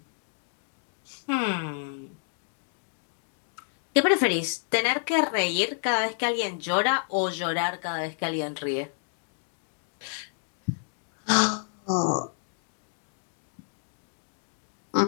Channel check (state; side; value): silent; right; digital silence